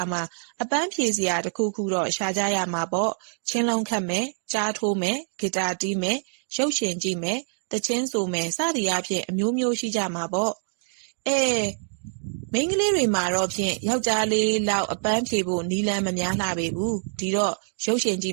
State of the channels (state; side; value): silent; left; digital silence